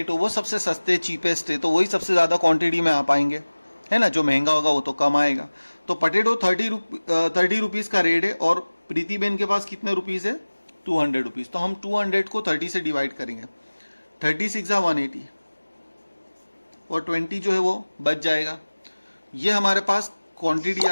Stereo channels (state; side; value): inverted; both; correlation -1.00